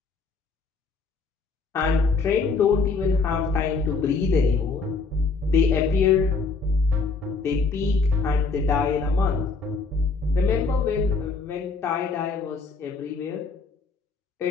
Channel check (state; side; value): quieter; right; 4.3 dB